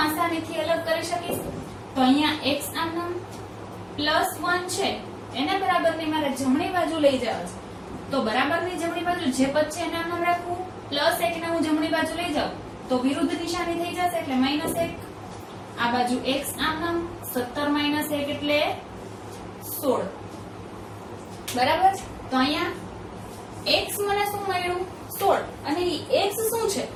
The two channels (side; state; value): both; identical; correlation 1.00